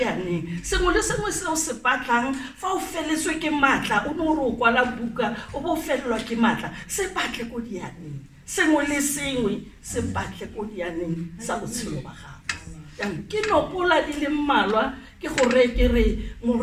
sengwe le sengwe se o se batlang fa o feletswe ke matla o no re o kwala buka o bo felelwa ke matla se batle ko Dianeng sengwe le sengwe se batle ko Dianeng sa botshelo ba gago ke nopola di le mmalwa ke gore ke re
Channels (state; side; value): identical; both; correlation 1.00